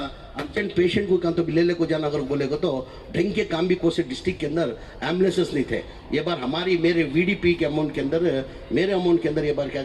अर्जेंट पेशेंट को कहाँ तो ले को जाना अगर बोलेगा तो ढंग के काम भी कोसे डिस्ट्रिक्ट के अंदर एम्बुलेंसेस नहीं थे। ये बार हमारी मेरे VDP के अमाउंट के अंदर, मेरे अमाउंट के अंदर ये बार क्या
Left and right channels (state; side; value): identical; both; correlation 1.00